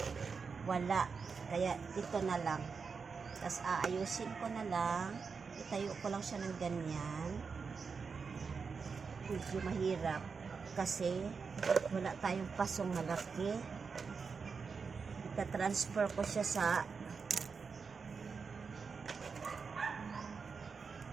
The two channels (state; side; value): quieter; left; 5.3 dB